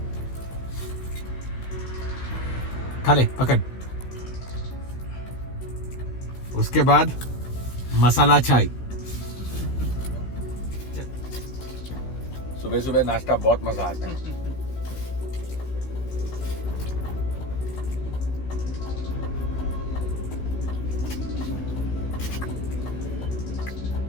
खा ले पकड़. उसके बाद मसाला चाय. सुबह सुबह नाश्ता बहुत मजा आता है.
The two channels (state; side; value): late; right; 16 ms